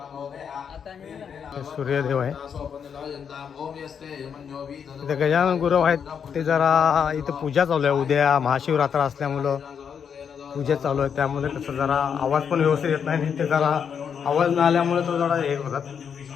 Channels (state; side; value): quieter; right; 7.3 dB